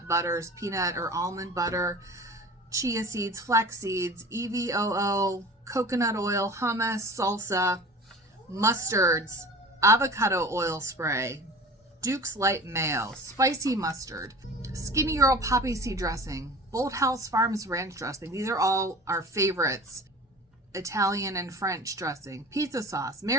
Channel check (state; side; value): normal; both; correlation 0.39